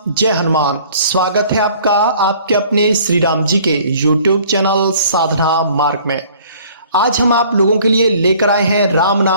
जय हनुमान। स्वागत है आपका आपके अपने श्री राम जी के YouTube चैनल साधना मार्ग में। आज हम आप लोगों के लिए लेकर आए हैं राम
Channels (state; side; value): inverted; both; correlation -0.54